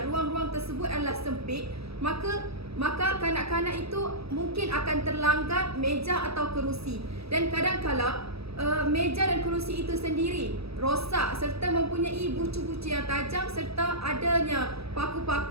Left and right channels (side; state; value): left; late; 0.78 ms